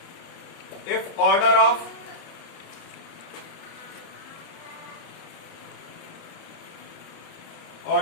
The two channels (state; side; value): late; right; 30 ms